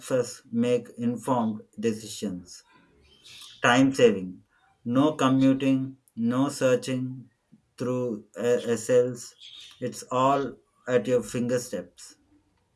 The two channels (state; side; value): identical; both; correlation 1.00